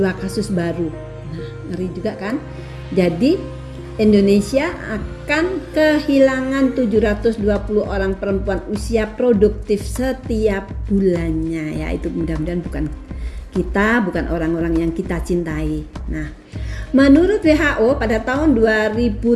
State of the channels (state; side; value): identical; both; correlation 1.00